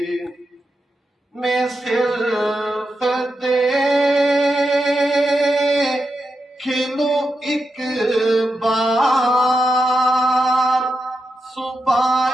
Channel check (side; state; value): both; normal; correlation 0.87